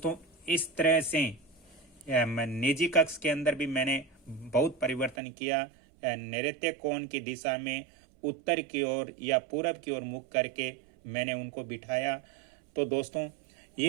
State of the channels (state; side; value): drops out; left; at 5.2 s